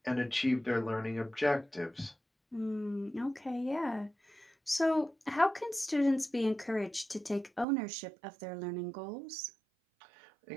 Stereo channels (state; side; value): drops out; left; at 7.7 s